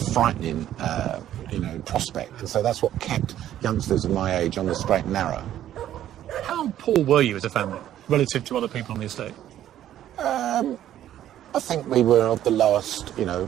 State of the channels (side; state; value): left; quieter; 11.9 dB